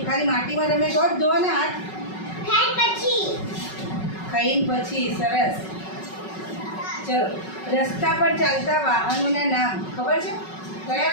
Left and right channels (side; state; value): right; late; 5.4 ms